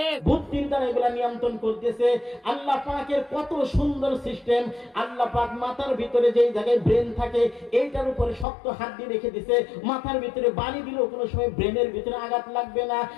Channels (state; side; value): drops out; right; at 8.5 s